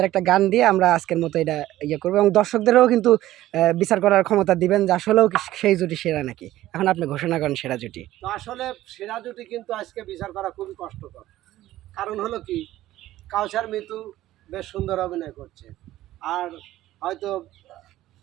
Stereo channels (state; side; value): quieter; left; 14.9 dB